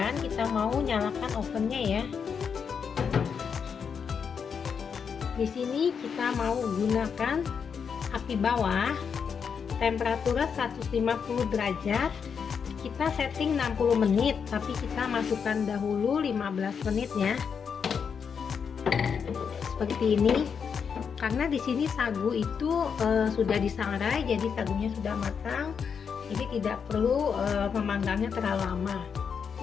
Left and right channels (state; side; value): quieter; right; 6.6 dB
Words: kita mau nyalakan ovennya ya. Di sini kita mau gunakan api bawah, temperatura 150 derajat. Kita setting 60 menit, tapi kita masukkan dahulu 15 menit ya. Seperti ini. Karena di sini sagu itu sudah disangrai, jadi sagunya sudah matang. Jadi tidak perlu memanggangnya terlalu lama.